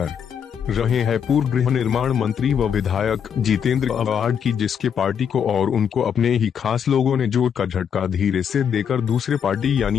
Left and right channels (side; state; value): right; quieter; 7.8 dB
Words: रहे हैं पूर्व गृह निर्माण मंत्री व विधायक जितेंद्र अवार्ड की, जिसके पार्टी को और उनको अपने ही खास लोगों ने जोर का झटका धीरे से देकर दूसरे पार्टी